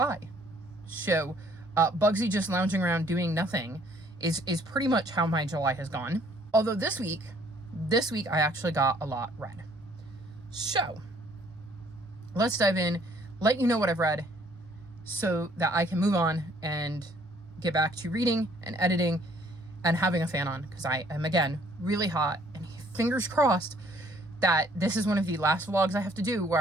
So Bugsy just lounging around doing nothing is pretty much how my July has gone. Although this week I actually got a lot read. So let's dive in, let you know what I've read so that I can move on and get back to reading and editing and having a fan on, because I am, again, really hot, and fingers crossed that this is one of the last vlogs I have to do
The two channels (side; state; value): both; normal; correlation 0.62